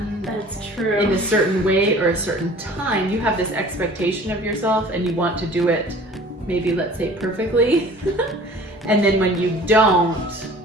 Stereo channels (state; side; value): normal; both; correlation 0.47